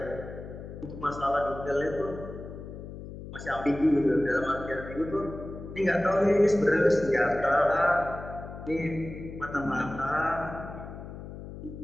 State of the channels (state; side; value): noise; left; hum, 11 dB below the sound